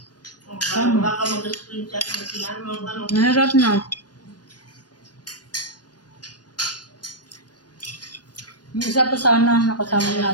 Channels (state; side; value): late; right; 0.69 ms